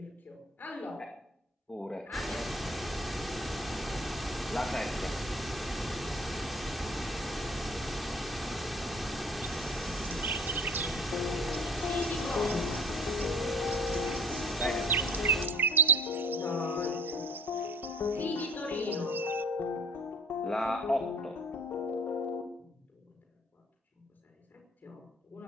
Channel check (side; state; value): both; normal; correlation 0.50